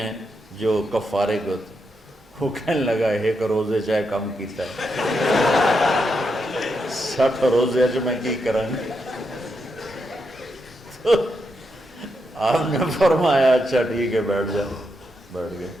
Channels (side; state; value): both; normal; correlation 0.83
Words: جو کفارے کے ہوتے ہیں۔ وہ کہنے لگا ایک روزے چاہے کم کیتا ہے 60 روزے اچ میں کی کروں گی؟ تو آپ نے فرمایا اچھا ٹھیک ہے بیٹھ جاؤ۔ بیٹھ گئے۔